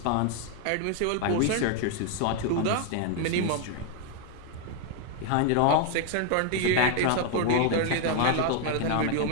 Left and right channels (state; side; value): different; both; correlation 0.00